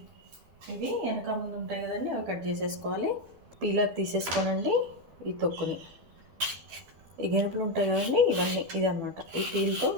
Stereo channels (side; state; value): left; late; 12 ms